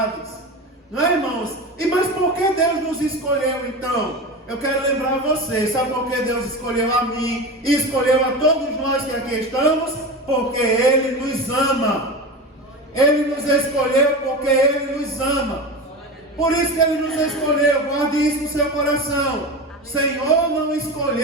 Não é, irmãos? Mas por que Deus nos escolheu então? Eu quero lembrar vocês, sabe por que Deus escolheu a mim e escolheu a todos nós que aqui estamos? Porque Ele nos ama. Ele nos escolheu porque Ele nos ama. Por isso que Ele nos escolheu. Guarde isso no seu coração. O Senhor não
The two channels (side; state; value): both; normal; correlation 0.26